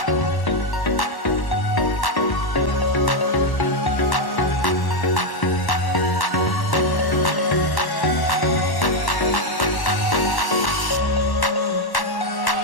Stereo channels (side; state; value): right; late; 1.1 ms